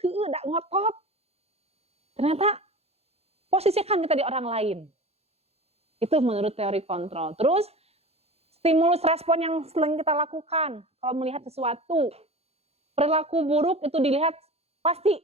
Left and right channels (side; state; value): left; late; 0.30 ms